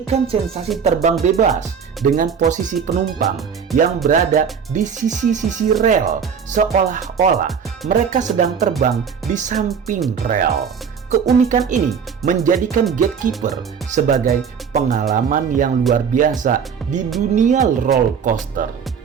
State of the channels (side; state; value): left; quieter; 6.8 dB